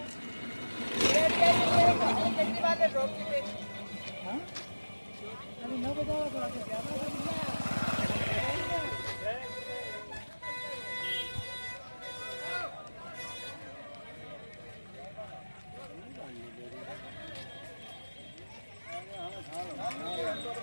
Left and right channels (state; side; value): inverted; both; correlation -1.00